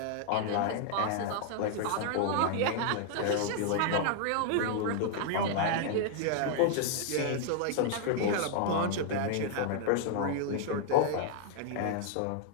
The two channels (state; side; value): different; both; correlation 0.00